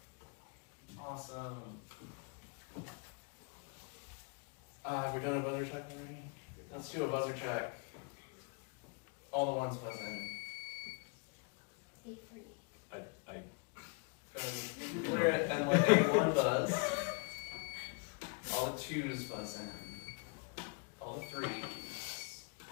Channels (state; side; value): quieter; right; 33.1 dB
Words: Awesome. We've done a buzzer check already? Let's do a buzzer check. All the ones buzz in. Clear it and let A1 buzz. All the 2s buzz in. All the 3s.